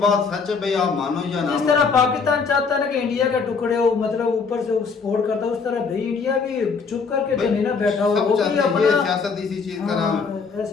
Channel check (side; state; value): right; quieter; 5.2 dB